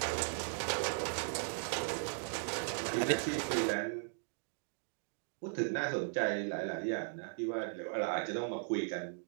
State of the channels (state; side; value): silent; left; digital silence